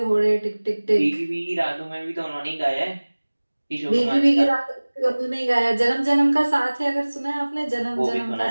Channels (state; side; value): inverted; both; correlation -1.00